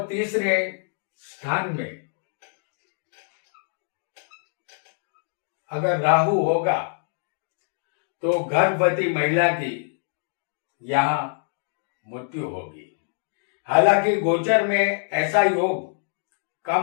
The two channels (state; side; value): silent; right; digital silence